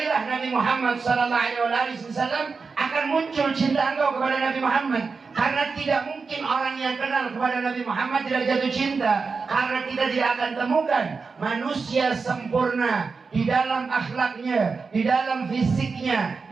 Nabi Muhammad sallallahu alaihi wasallam, akan muncul cinta engkau kepada Nabi Muhammad. Karena tidak mungkin orang yang kenal kepada Nabi Muhammad tidak jatuh cinta. Karena kita tidak akan temukan manusia sempurna di dalam akhlaknya, di dalam fisiknya,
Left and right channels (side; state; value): left; quieter; 4.8 dB